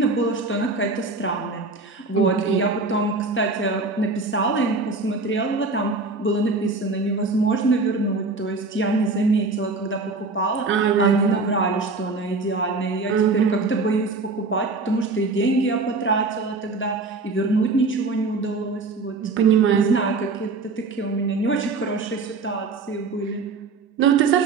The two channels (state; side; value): quieter; left; 3.8 dB